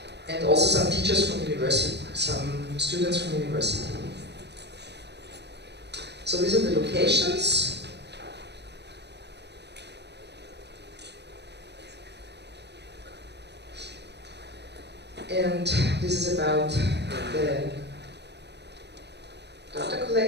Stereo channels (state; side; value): late; left; 0.50 ms